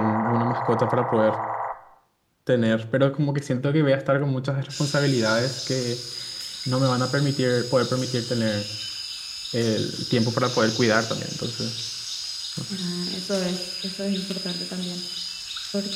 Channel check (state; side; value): identical; both; correlation 1.00